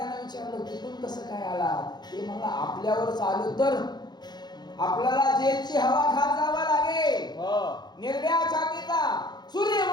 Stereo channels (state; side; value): late; right; 0.20 ms